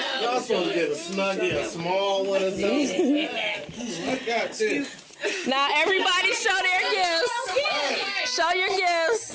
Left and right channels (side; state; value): both; identical; correlation 1.00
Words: Y'all supposed to get a snuggie, a small one or something. I got this. Now everybody show their gifts. Show your gifts.